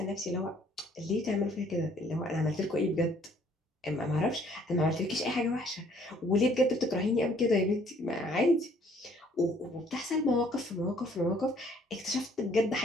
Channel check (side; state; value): both; normal; correlation 0.61